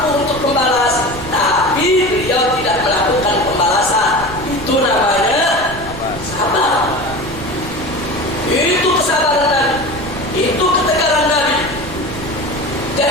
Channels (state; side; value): noise; right; rumble, 13 dB below the sound